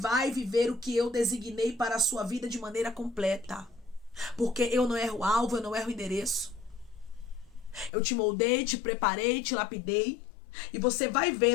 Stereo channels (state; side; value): drops out; right; at 7.9 s